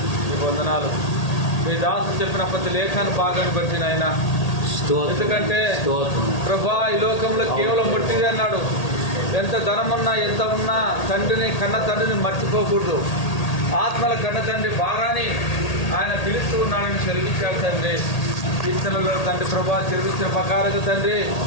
మీ వందనాలు. మీ దాసు చెప్పిన ప్రతి లేఖాన్ని భాగాన్ని బట్టి నాయన. ఎందుకంటే ప్రభా ఈ లోకంలో కేవలం ముట్టిదే అన్నాడు. ఎంత ధనమున్నా ఎంత ఉన్నా కన్న తండ్రిని మర్చిపోకూడదు. ఆత్మల కన్న తండ్రి భారాన్ని ఆయన పిలుస్తూ ఉన్నాడని సెలవిచ్చాడు తండ్రి. కీర్తనలో తండ్రి ప్రభా సెలవిచ్చిన ప్రకారంగా తండ్రి,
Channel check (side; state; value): right; late; 1.8 ms